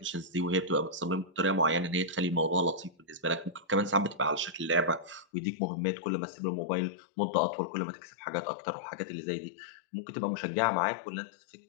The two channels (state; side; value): drops out; right; at 5.2 s